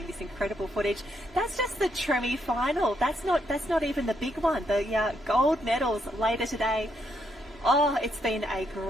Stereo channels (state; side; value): normal; both; correlation 0.77